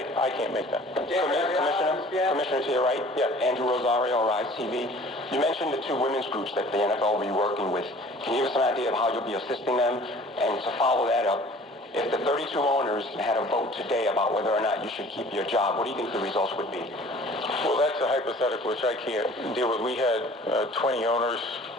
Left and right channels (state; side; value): normal; both; correlation 0.49